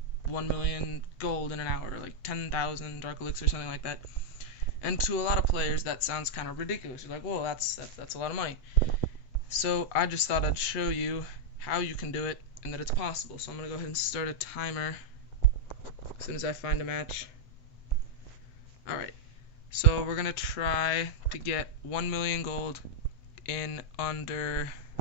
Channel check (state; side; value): late; right; 8.0 ms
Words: 1 million gold in an hour, like 10,000 dark elixir, something like that." And to a lot of players, that sounds kind of ridiculous. You're like, "Whoa, that's a lot of money." So I just thought I'd show you how you can do it and that it's possible. So I'm gonna go ahead and start a timer as soon as I find a match. All right. So we're gonna try to get 1 million gold in under